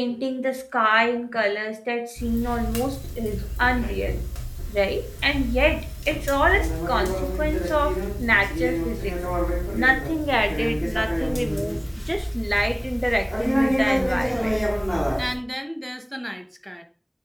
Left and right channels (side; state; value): both; identical; correlation 1.00